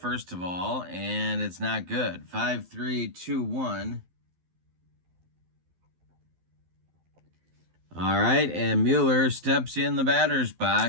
of all, and it's not good. 5-3-2-1. All right, and Mueller steps in the batter's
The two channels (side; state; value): left; late; 12 ms